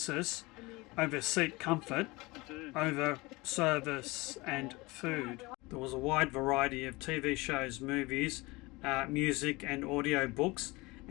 over seat comfort, over service and food. There was a wide variety of TV shows, movies, music and audio books,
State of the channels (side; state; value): right; quieter; 23.1 dB